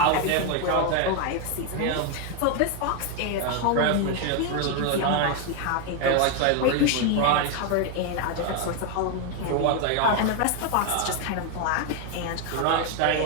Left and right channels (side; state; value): both; different; correlation 0.01